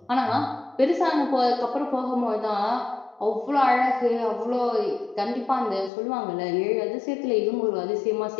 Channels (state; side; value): drops out; right; at 5.9 s